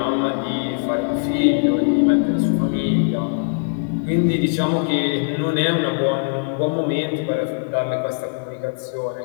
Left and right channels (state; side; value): silent; right; digital silence